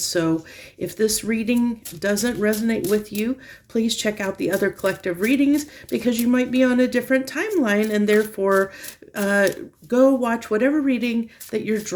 so if this reading doesn't resonate with you, please check out the other collective readings because you might be on a different timeline, and therefore go watch whatever reading that you're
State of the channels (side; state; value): both; identical; correlation 1.00